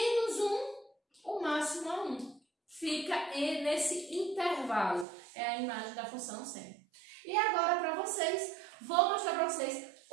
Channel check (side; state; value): left; drops out; at 5.1 s